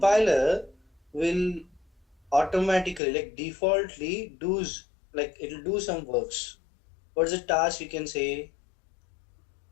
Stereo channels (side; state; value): right; drops out; at 3.0 s